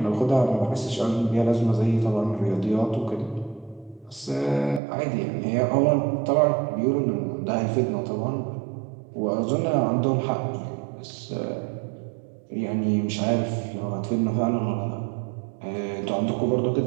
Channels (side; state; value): left; drops out; at 4.8 s